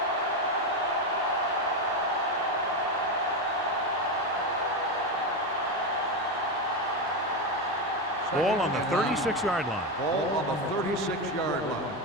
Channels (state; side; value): normal; both; correlation 0.12